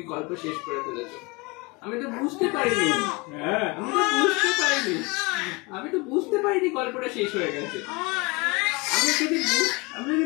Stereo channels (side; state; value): right; quieter; 25.4 dB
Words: গল্প শেষ করে ফেলেছো। আমি তো বুঝতে পারিনি। হ্যাঁ আমি তো বুঝতে পারিনি গল্পটা শেষ হয়ে গেছে। আমি যদি